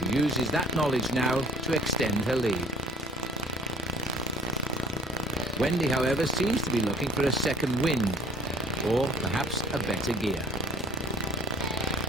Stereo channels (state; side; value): normal; both; correlation 0.51